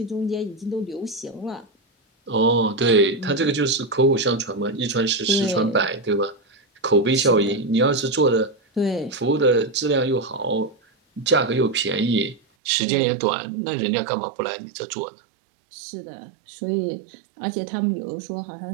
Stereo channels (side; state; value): left; drops out; at 12.4 s